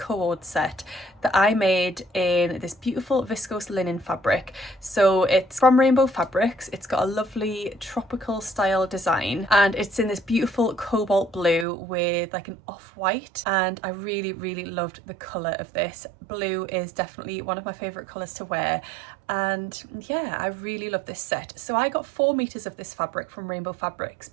set that I made in this beautiful viscose linen fabric. So it's from Rainbow Fabrics. It's got a lovely tropical style design and it's in this beautiful cobalt blue with like an off-white, and I really loved the colour of this. Blue is definitely one of my favourite colours to wear, and yeah, I really love this set. So I got 4 meters of this fabric from Rainbow Fabrics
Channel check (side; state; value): left; drops out; at 11.7 s